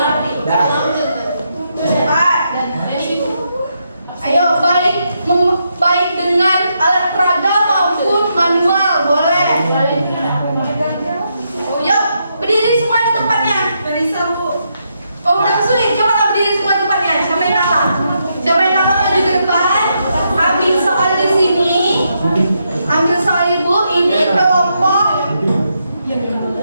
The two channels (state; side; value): inverted; both; correlation -0.80